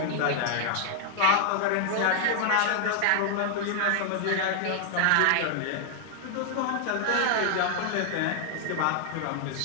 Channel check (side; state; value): both; different; correlation -0.01